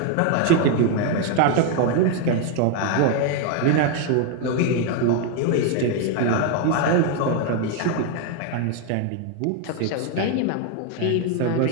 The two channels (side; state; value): both; different; correlation 0.01